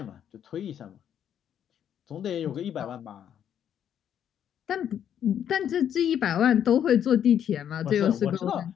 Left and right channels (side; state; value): right; quieter; 9.4 dB